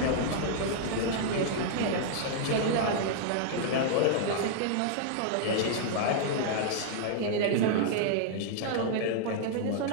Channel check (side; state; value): both; different; correlation -0.01